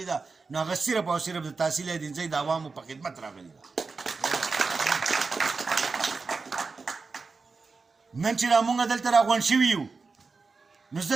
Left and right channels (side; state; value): left; quieter; 4.4 dB